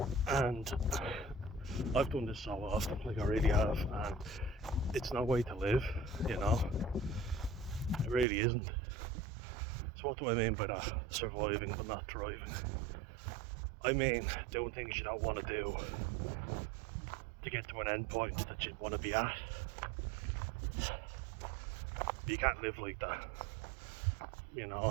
And I've done this so often, like I really have, and it's no way to live, you know. It really isn't. So what do I mean by that? Surviving but not thriving. I mean doing things you don't want to do to get to an end point that you want to be at. You can't live like that, you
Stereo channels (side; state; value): left; drops out; at 8.2 s